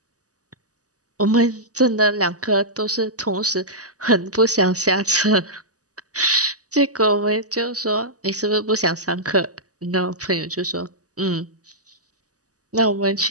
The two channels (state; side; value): late; left; 0.67 ms